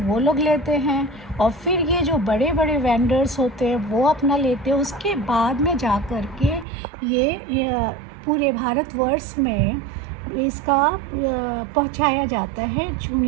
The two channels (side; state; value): left; drops out; at 6.7 s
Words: वो लोग लेते हैं, और फिर ये जो बड़े बड़े वेंडर्स होते हैं वो अपना लेते हैं। उसके बाद में जा कर के ये पूरे भारतवर्ष में इसका पहुंचाया जाता है